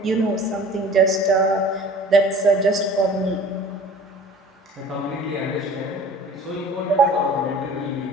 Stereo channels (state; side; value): normal; both; correlation 0.45